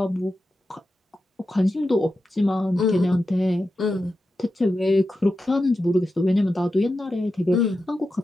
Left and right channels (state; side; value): normal; both; correlation 0.90